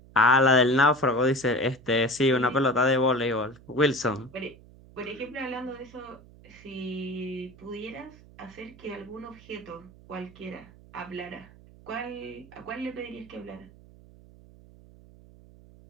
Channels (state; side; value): noise; right; hum, 23 dB below the sound